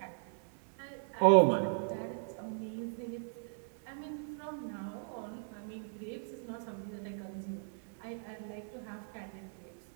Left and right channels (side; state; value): left; silent; 53 dB below the other